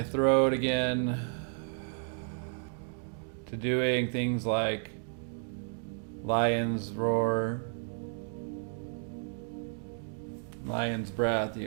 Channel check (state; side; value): silent; left; 55 dB below the other